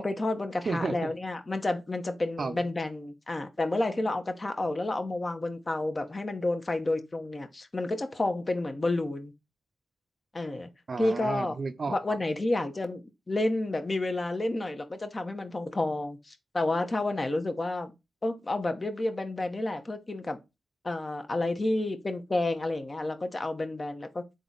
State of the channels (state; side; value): normal; both; correlation 0.95